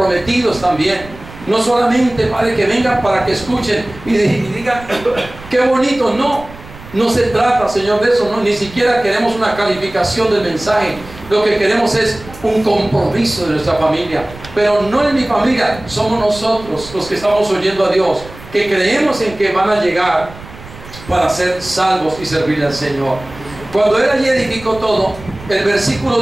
también. No solamente, Padre, que vengan para que escuchen y digan, qué bonito, no. No se trata, Señor, de eso, no, ni siquiera queremos una calificación del mensaje. Lo que queremos es un compromiso de nuestra familia. Pero no en mi familia, somos nosotros los que estamos oyendo a Dios, que creemos en que van a llegar para ser salvos y servirle al Señor. Cuando Él allí edificó todo, el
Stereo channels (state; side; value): noise; right; rumble, 17 dB below the sound